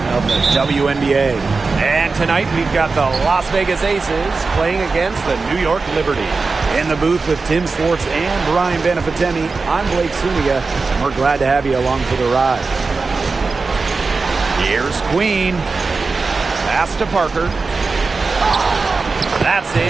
of the WNBA. And tonight we've got the Las Vegas Aces playing against the New York Liberty. In the booth with Tim Swartz and Brian Benefitemi, I'm Blake Suniga, and we're glad to have you along for the ride. Here's Queen. Pass to Parker. That's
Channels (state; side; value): quieter; left; 4.2 dB